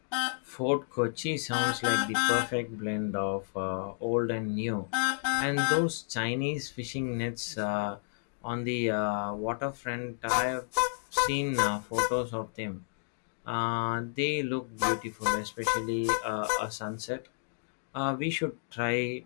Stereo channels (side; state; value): right; silent; digital silence